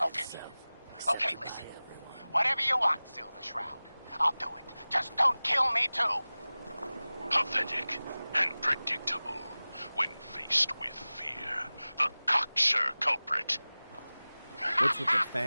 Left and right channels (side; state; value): both; inverted; correlation -0.99